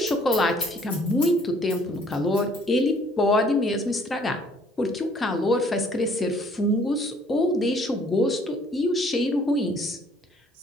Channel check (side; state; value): both; normal; correlation 0.60